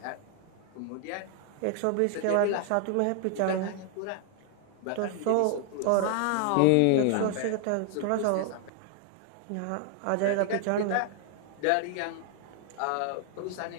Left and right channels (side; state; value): both; different; correlation 0.00